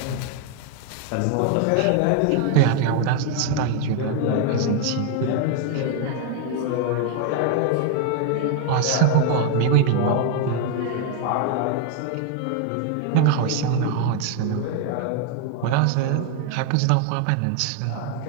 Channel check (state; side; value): different; both; correlation 0.01